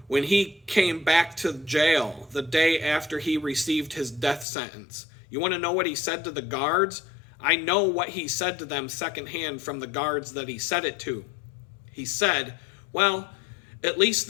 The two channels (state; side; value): drops out; right; at 4.5 s